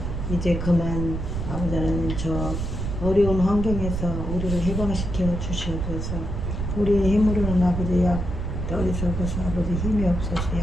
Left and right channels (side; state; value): right; noise; rumble, 3 dB below the sound